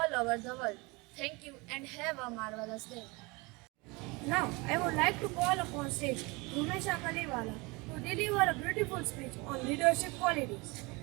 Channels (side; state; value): left; quieter; 26.0 dB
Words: over the world. Thank you and have a marvelous day. Now, I would like to call upon stage Rumesha Kaliwala to deliver a beautiful speech on leadership qualities.